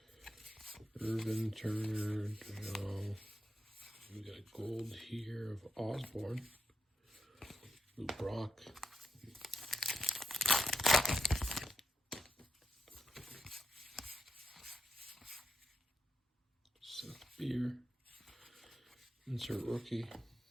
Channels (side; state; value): both; normal; correlation 0.87